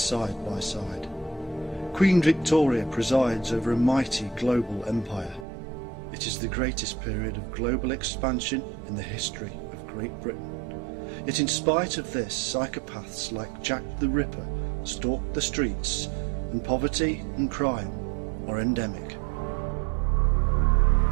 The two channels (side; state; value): left; drops out; at 5.5 s